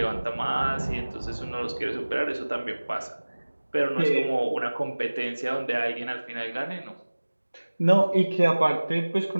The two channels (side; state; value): both; inverted; correlation -1.00